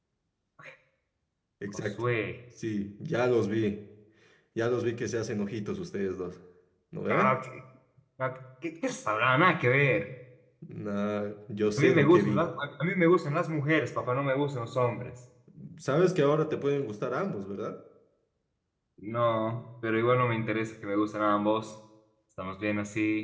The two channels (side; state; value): both; identical; correlation 1.00